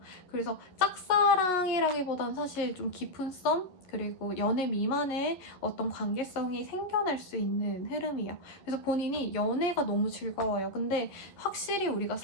그래서 짝사랑이라기보단 사실 좀 깊은 썸 그리고 연애 미만의 어떤 관계성이 생겨날 수 있는 흐름이에요. 그래서 본인이 연애가 너무 즐거워요. 근데 확실히 우리가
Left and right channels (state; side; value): late; right; 11 ms